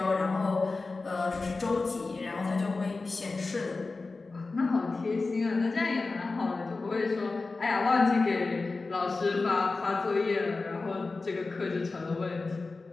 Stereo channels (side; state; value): right; quieter; 3.7 dB